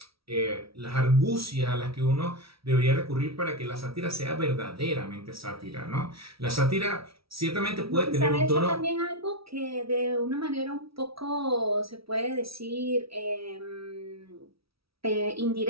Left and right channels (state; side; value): late; left; 0.75 ms